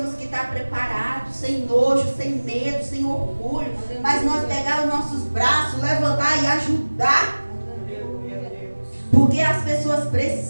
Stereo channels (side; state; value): both; inverted; correlation -1.00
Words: que estar preparados, sem nojo, sem medo, sem orgulho. Mas nós pegar os nossos braços, levantar e ajudar. Porque as pessoas